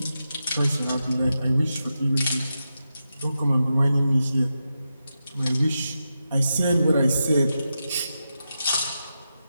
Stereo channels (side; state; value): both; inverted; correlation -0.88